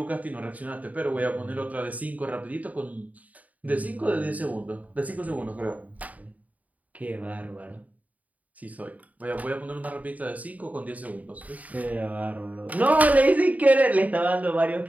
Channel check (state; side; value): late; left; 0.073 ms